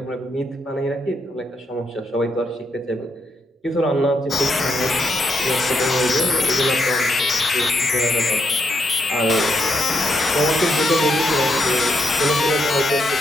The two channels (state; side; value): normal; both; correlation 0.79